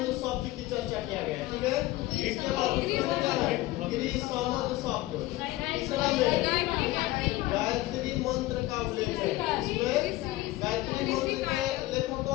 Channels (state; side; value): quieter; right; 17.7 dB